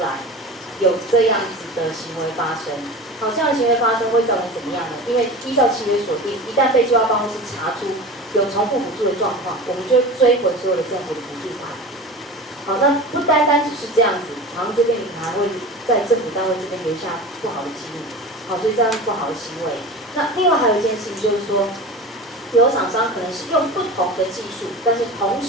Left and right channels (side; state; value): both; normal; correlation 0.32